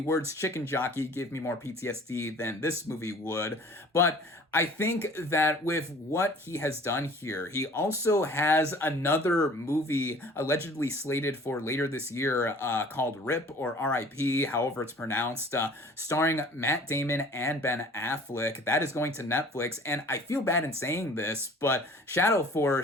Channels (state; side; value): normal; both; correlation 0.49